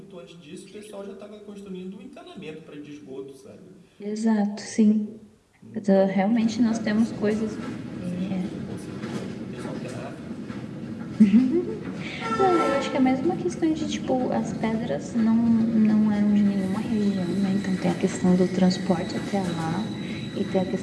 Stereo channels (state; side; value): identical; both; correlation 1.00